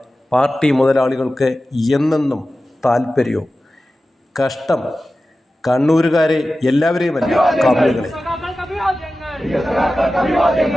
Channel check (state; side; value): normal; both; correlation 0.94